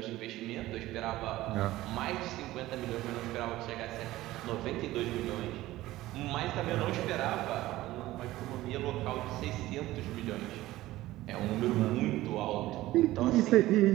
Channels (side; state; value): left; quieter; 16.6 dB